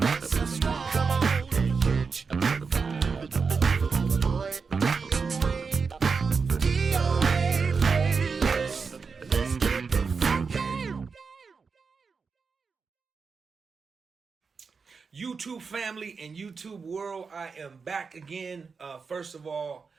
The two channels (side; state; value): left; quieter; 5.1 dB